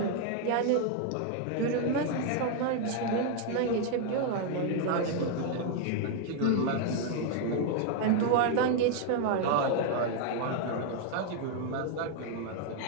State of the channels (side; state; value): both; different; correlation 0.00